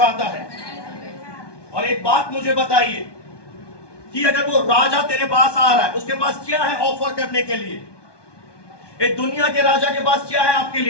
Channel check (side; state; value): right; late; 1.2 ms